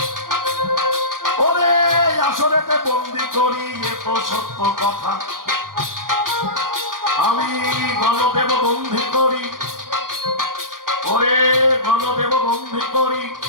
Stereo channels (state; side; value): late; left; 0.91 ms